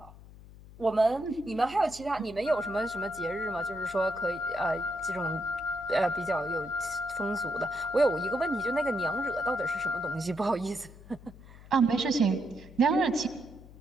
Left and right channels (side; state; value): left; noise; hum, 19 dB below the sound